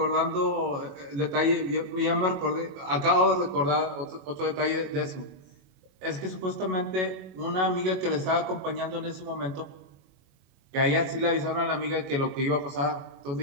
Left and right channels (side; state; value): left; late; 22 ms